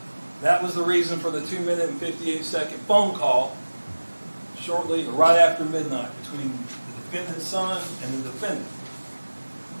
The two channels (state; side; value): inverted; both; correlation -1.00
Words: That was the reason for the 2-minute and 58-second phone call shortly or right after midnight between the defendant's son and the defendant,